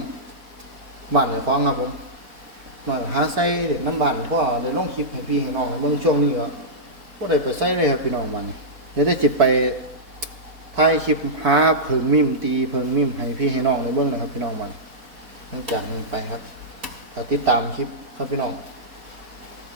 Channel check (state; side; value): late; left; 4.1 ms